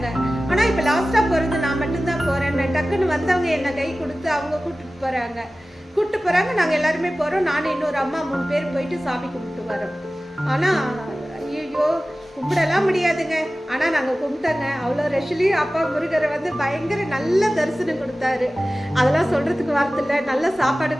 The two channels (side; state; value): both; normal; correlation 0.96